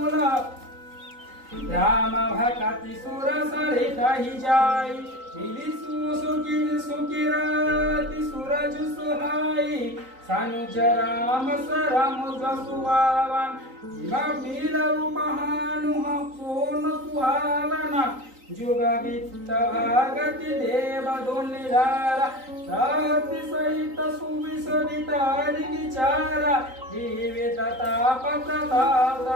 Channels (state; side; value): late; left; 3.9 ms